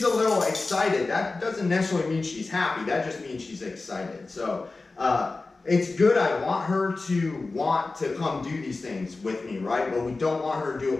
a little excited. That doesn't necessarily mean she's happy. That just means she's excited. So it's good. I want her to want to come do these things with me, right? But we don't want her to do it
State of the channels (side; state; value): right; quieter; 3.6 dB